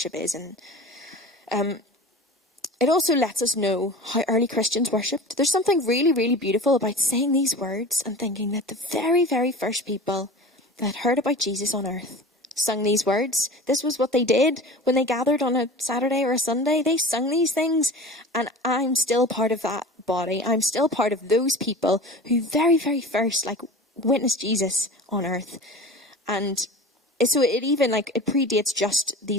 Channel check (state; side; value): normal; both; correlation 0.36